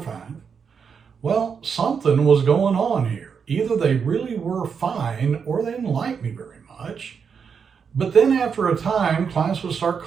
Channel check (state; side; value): quieter; left; 6.4 dB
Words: Well, something was going on here. Either they really were fine or they didn't like me very much. But then after a time, clients would start